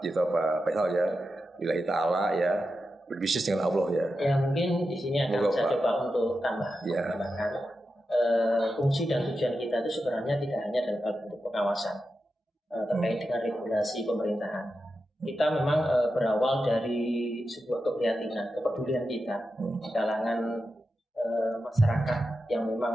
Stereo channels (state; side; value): normal; both; correlation 0.90